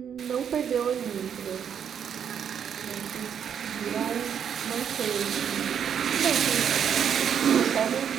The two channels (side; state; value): left; quieter; 8.2 dB